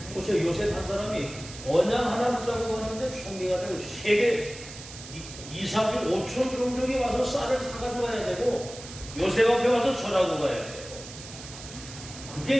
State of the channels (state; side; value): noise; right; hiss, 14 dB below the sound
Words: 보세요. 요셉 한 사람이 언양 하나 붙잡고 갔는데 총리가 되고 세계 2, 3주 5천 종족이 와서 쌀을 사가지고 가야 되고 요셉 앞에 와서 전하고 가야 돼요.